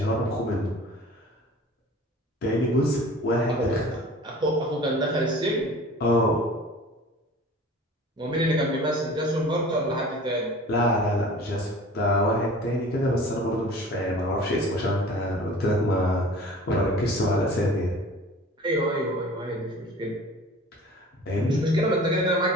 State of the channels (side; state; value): both; normal; correlation 0.43